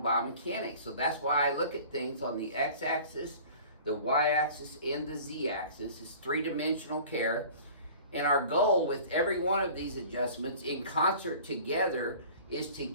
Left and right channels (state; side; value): inverted; both; correlation -0.44